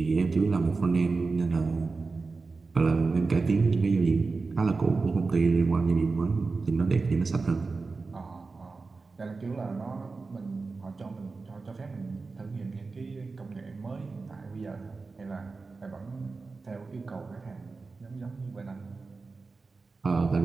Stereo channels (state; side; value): quieter; left; 4.1 dB